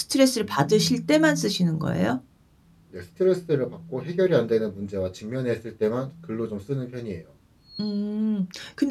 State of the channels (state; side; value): identical; both; correlation 1.00